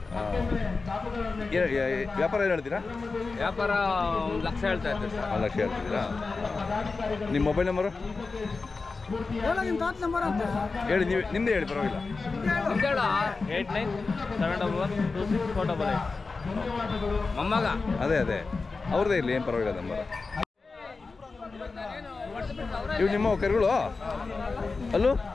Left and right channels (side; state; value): right; quieter; 4.1 dB